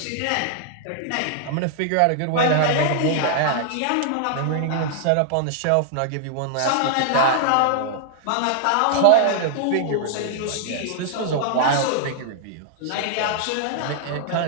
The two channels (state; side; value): different; both; correlation -0.01